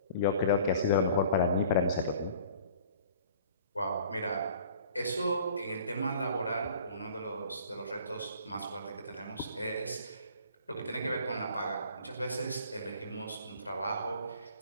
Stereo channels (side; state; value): both; inverted; correlation -0.48